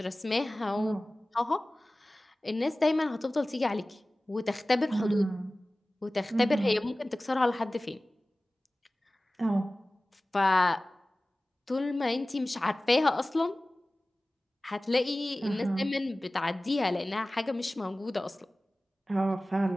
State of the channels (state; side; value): normal; both; correlation 0.97